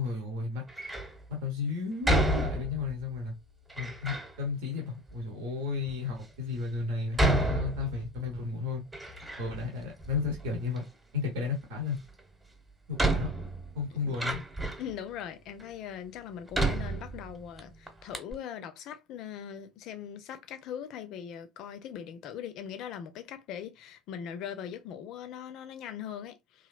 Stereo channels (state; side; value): normal; both; correlation 0.39